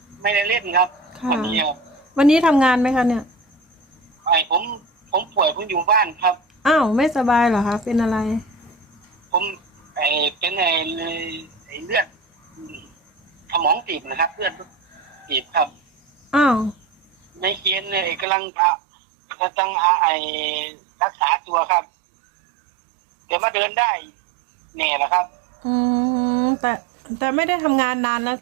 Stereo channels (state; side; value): drops out; left; at 18.2 s